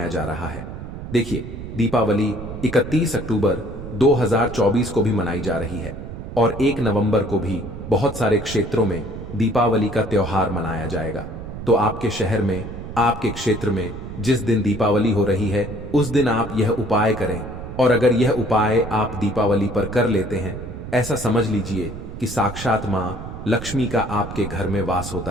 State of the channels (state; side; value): noise; right; rumble, 10 dB below the sound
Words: जा रहा है। देखिए दीपावली 31 अक्टूबर 2024 को भी मनाई जा रही है और 1 नवंबर को भी बहुत सारे क्षेत्रों में दीपावली का त्योहार मनाया जाएगा। तो आपके शहर में आपके क्षेत्र में जिस दिन दीपावली हो रही है उस दिन आप यह उपाय करें और अगर यह उपाय आप दीपावली पर कर लेते हैं ऐसा समझ लीजिए कि साक्षात मां लक्ष्मी का आपके घर में वास